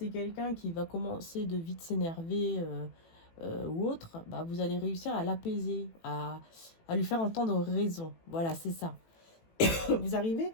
quelqu'un qui va commencer de vite s'énerver ou autre, bah, vous allez réussir à l'apaiser, à lui faire entendre raison. Voilà, c'est ça. Vous arrivez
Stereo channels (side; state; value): right; late; 18 ms